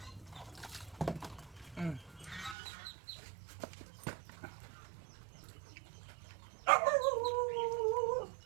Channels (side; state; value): left; drops out; at 2.6 s